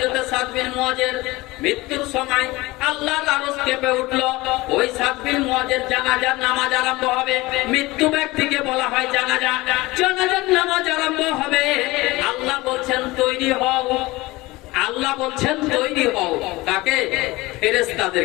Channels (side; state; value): right; quieter; 20.7 dB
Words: সাদ বিন মুআযের মৃত্যুর সময় আল্লাহর আরশ কেঁপে উঠলো। ওই সাদ বিন মুআযের জানাজার নামাজ আরম্ভ হবে। মৃত্যু ব্যক্তিকে বলা হয় জানাজা, জানাজার নামাজ আরম্ভ হবে। আল্লাহ বলছেন তৈরি হও, আল্লাহ বলছেন তৈরি হও। কাকে?